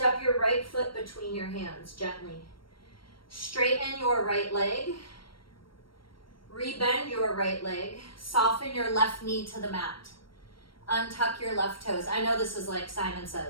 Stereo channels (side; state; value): right; late; 0.73 ms